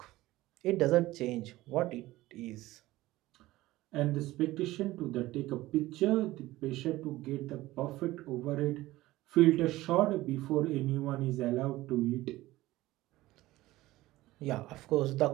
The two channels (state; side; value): quieter; left; 17.5 dB